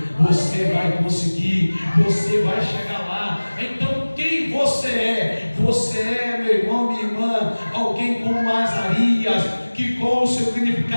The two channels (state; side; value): inverted; both; correlation -1.00